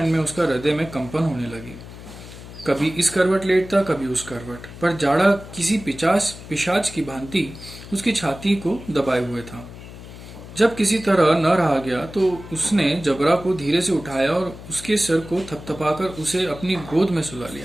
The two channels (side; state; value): left; noise; hum, 15 dB below the sound